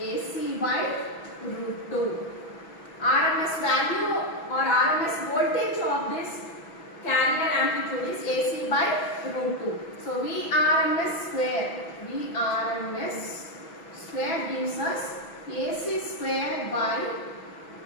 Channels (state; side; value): late; right; 6.1 ms